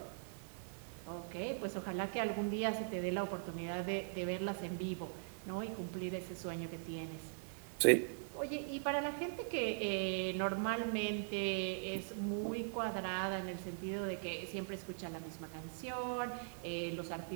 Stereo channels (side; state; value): left; silent; 50 dB below the other